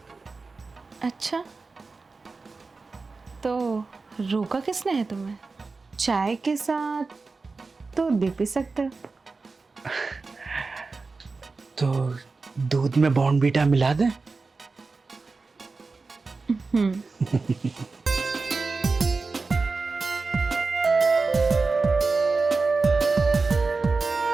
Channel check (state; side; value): quieter; left; 4.0 dB